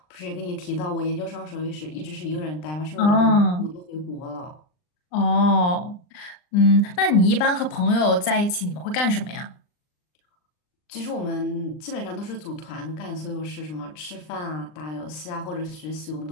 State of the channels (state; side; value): late; right; 39 ms